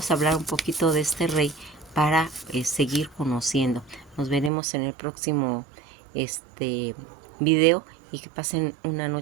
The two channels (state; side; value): drops out; left; at 4.5 s